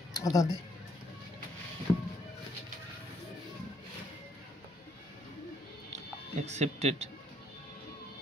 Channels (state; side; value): normal; both; correlation 0.69